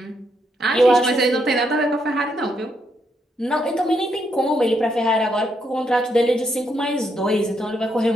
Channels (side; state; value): both; normal; correlation 0.77